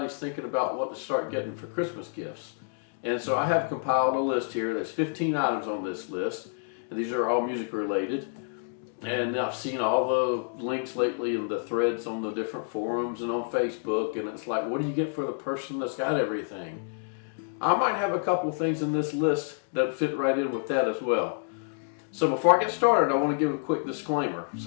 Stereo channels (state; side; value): silent; right; digital silence